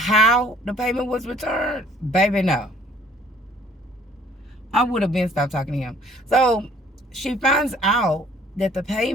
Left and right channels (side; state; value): both; normal; correlation 0.57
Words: the payment was returned, baby, no. I would have been stopped talking to him. So she finds out that the